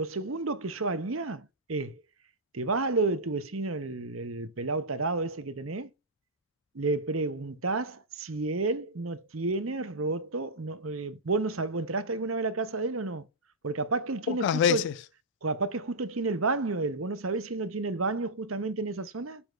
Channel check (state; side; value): normal; both; correlation -0.10